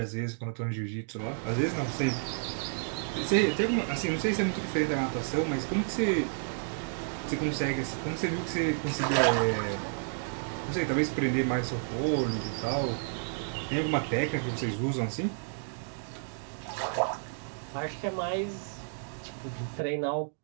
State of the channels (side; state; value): left; silent; digital silence